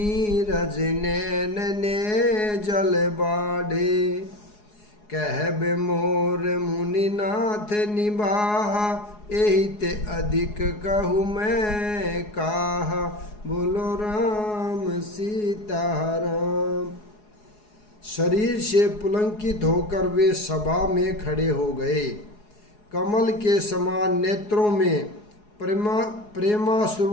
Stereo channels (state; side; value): late; right; 4.8 ms